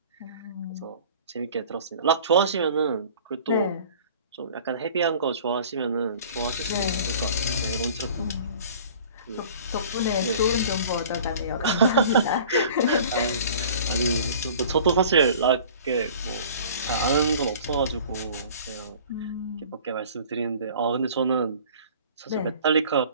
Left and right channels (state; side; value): inverted; both; correlation -0.46